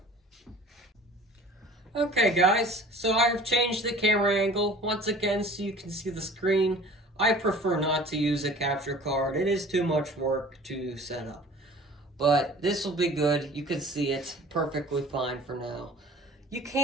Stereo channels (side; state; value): both; normal; correlation 0.46